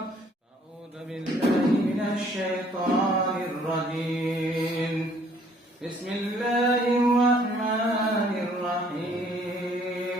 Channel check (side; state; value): both; normal; correlation 0.61